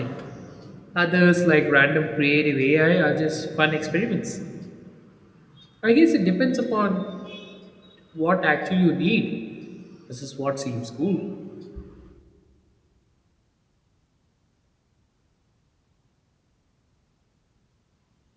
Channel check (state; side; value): identical; both; correlation 1.00